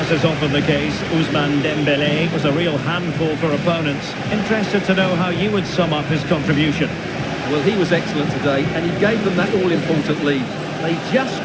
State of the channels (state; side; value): identical; both; correlation 1.00